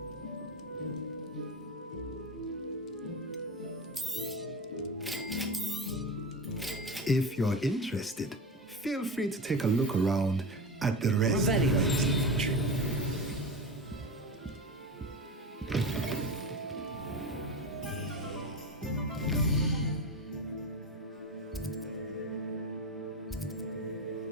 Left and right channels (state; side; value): normal; both; correlation 0.24